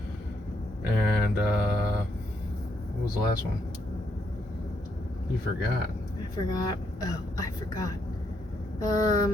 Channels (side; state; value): both; normal; correlation 0.77